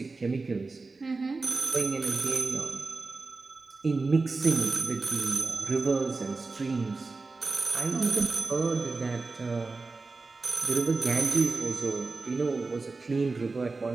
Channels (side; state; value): left; quieter; 3.8 dB